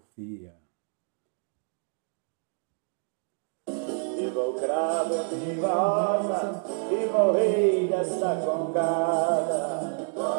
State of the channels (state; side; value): silent; left; 57 dB below the other